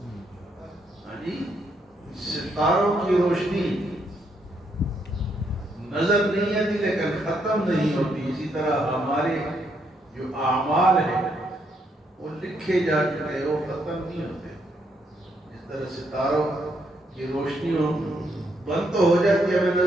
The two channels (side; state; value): both; normal; correlation 0.75